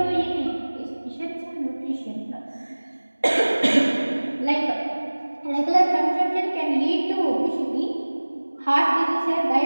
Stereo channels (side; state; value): both; inverted; correlation -1.00